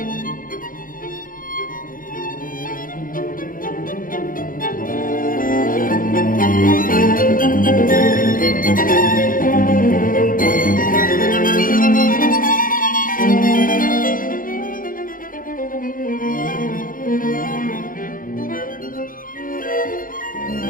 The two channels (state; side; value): late; right; 0.40 ms